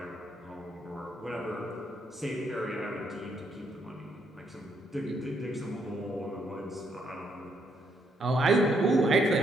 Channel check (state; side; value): normal; both; correlation 0.74